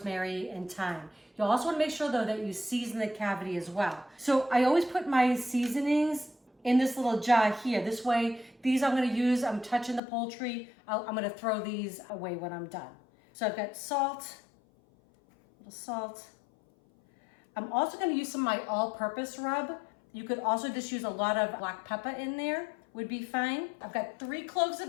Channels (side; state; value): right; drops out; at 10.0 s